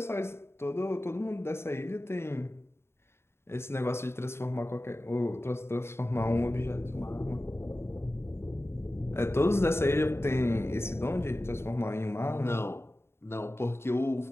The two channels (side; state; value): right; late; 0.12 ms